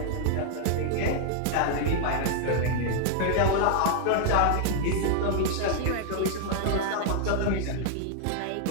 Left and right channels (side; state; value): both; different; correlation 0.00